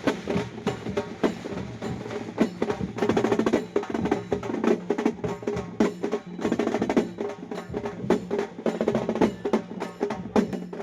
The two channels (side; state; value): both; identical; correlation 1.00